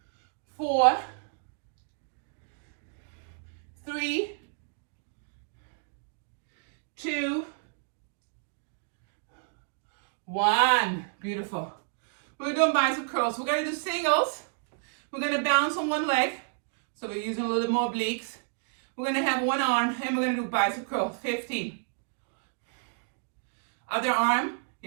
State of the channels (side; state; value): left; silent; digital silence